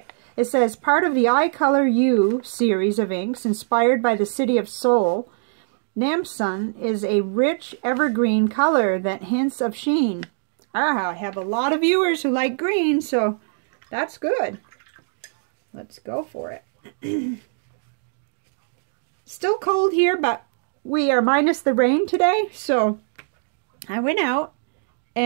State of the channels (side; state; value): left; silent; digital silence